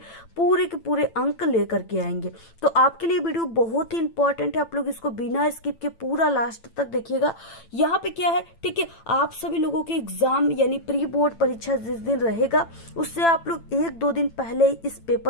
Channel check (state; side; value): late; right; 8.9 ms